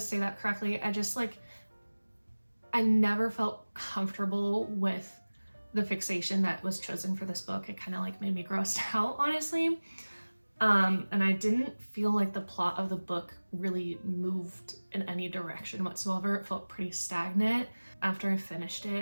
that correctly. I never felt comfortable with the fixation that was chosen for this book. It kind of like made me grossed out, honestly. And I didn't feel like the plot of the book really moved in any direction whatsoever. It felt pretty stagnant. After I finished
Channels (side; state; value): both; inverted; correlation -1.00